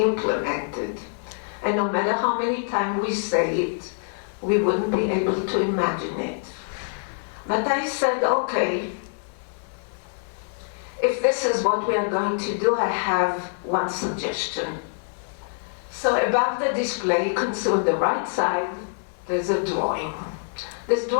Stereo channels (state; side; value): silent; right; digital silence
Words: And no matter how many times we say it, we wouldn't be able to imagine it. But I said, okay, if this is what we are going to do, I have one suggestion. So above the display, you can see on the right side, there's a drawing. This